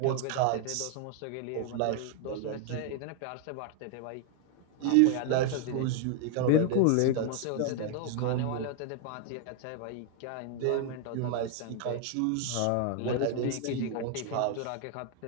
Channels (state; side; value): different; both; correlation 0.00